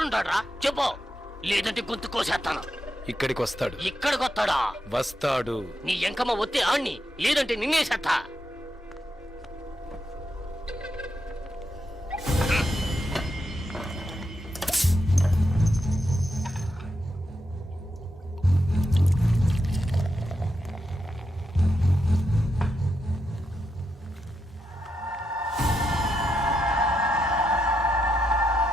చెప్పు, లేదంటే గొంతు కోసేస్తాను. ఇక్కడికి వస్తాడు. ఇక్కడికి వస్తాడా? వస్తాడు. నీ ఎంకమ్మ వస్తే ఆణ్ణి, లేదంటే నిన్నేసేస్తా.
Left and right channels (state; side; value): normal; both; correlation 0.84